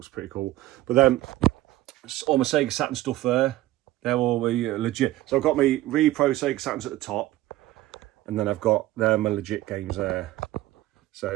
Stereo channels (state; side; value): quieter; left; 16.1 dB